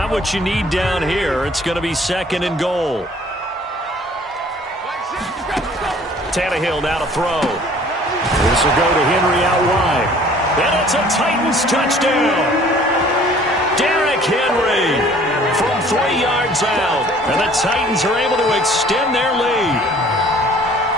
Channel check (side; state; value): both; normal; correlation 0.53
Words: what you need down here. It's going to be 2nd and goal. Tannehill now to throw. This will go to Henry out wide. And it's a Titans touchdown. Derrick Henry from 3 yards out. And the Titans are able to extend their lead.